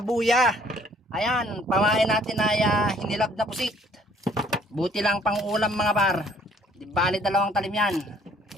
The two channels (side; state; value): both; normal; correlation 0.60